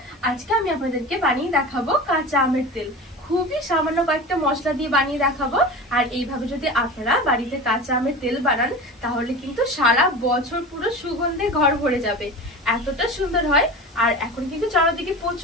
আজকে আমি আপনাদেরকে বানিয়ে দেখাবো কাঁচা আমের তেল। খুবই সামান্য কয়েকটা মশলা দিয়ে বানিয়ে দেখাবো। আর এইভাবে যদি আপনারা বাড়িতে কাঁচা আমের তেল বানান তাহলে কিন্তু সারা বছর পুরো সুগন্ধে ঘর ভরে যাবে, এতটা সুন্দর হয়। আর এখন কিন্তু চারিদিকে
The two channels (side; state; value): both; normal; correlation 0.31